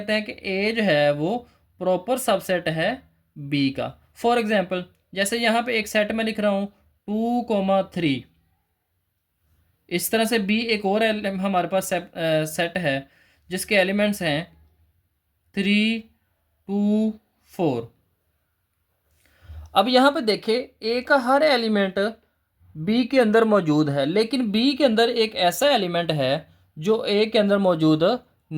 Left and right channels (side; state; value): both; identical; correlation 1.00